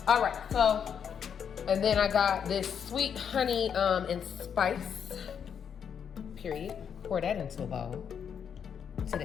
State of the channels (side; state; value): right; quieter; 7.7 dB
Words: All right, so, and then I got this sweet honey and spice. Period. Pour that into a bowl. Into